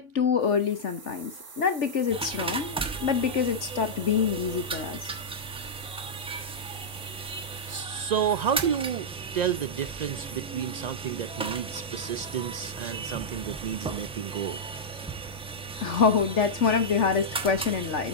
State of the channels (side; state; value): both; normal; correlation -0.08